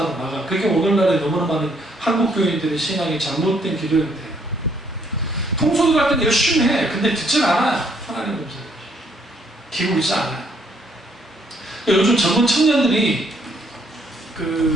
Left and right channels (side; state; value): both; normal; correlation 0.68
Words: 나가. 그게 오늘날에 너무나 많은 한국 교인들의 신앙이 잘못된 기도인데, 통속이 갈 때는 열심히 해. 근데 듣질 않아요. 하나님 음성. 기울이지 않아요. 요즘 젊은 청년들이